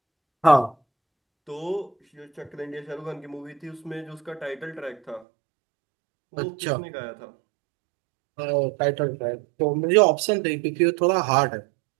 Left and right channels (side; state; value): left; drops out; at 5.2 s